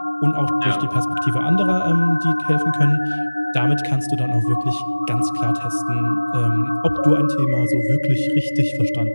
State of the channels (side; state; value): both; inverted; correlation -1.00